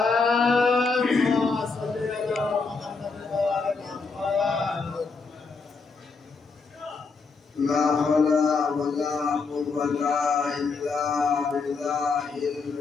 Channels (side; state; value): right; quieter; 4.5 dB